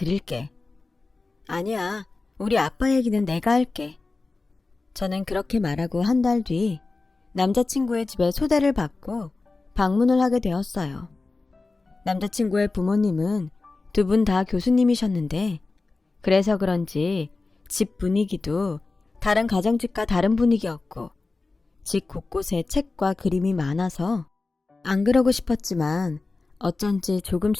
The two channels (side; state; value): right; quieter; 3.6 dB